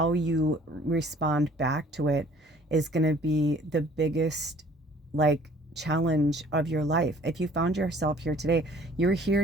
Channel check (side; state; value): both; normal; correlation 0.54